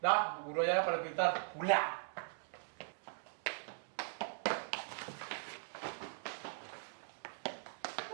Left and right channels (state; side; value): silent; left; digital silence